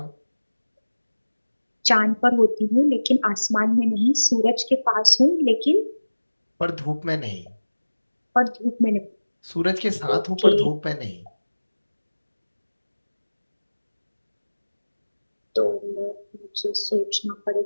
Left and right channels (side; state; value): both; inverted; correlation -1.00